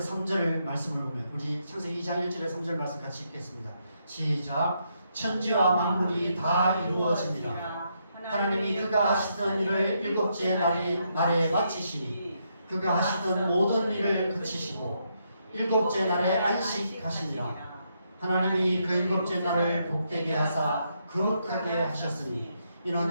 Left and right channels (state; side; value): inverted; both; correlation -0.78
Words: 3절 말씀을 보면, 우리 창세기 2장 1절에서 3절 말씀 같이 읽겠습니다. 시작. 천지와 만물이 다 이루어집니다. 하나님이 그가 하시던 일을 일곱째 날에 마치시니 그가 하시던 모든 일을 그치시고 일곱째 날에 안식하시니라. 하나님이 그 일곱째 날을 복되게 하사 거룩하게 하셨으니 이는